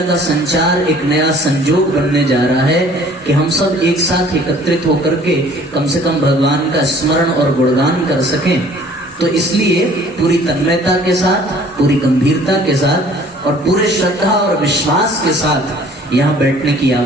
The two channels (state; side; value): normal; both; correlation 0.53